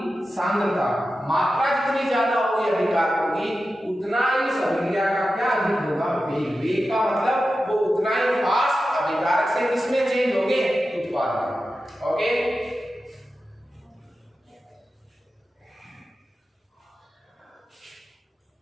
सांद्रता, मात्रा जितनी ज्यादा होगी अभिकारकों की, उतना ही इस अभिक्रिया का क्या अधिक होगा, वेग। वेग का मतलब वो उतना ही फास्ट अभिकारक से किसमें चेंज होंगे, उत्पाद में। ओके,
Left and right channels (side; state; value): both; normal; correlation 0.92